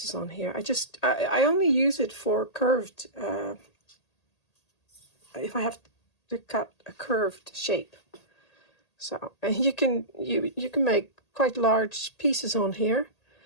on here. I only use it for curved if I have to cut a curved shape. So, and you can make quite large pieces on here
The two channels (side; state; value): right; late; 1.8 ms